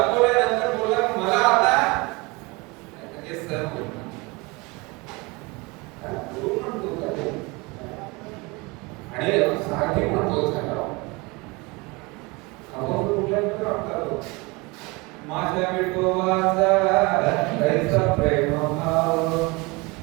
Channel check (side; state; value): left; quieter; 25.9 dB